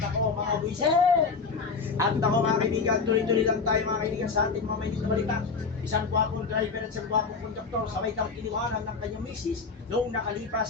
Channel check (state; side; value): quieter; right; 4.8 dB